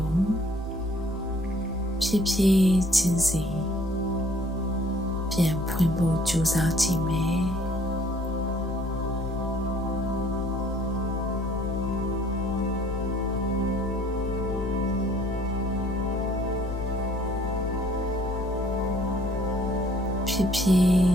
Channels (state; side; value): normal; both; correlation 0.58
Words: ိုဖြည်းဖြည်းချင်းစီပြန်ဖွင့်ဖို့ကြိုးစားကြည့်မယ်ဖြည်းဖြည်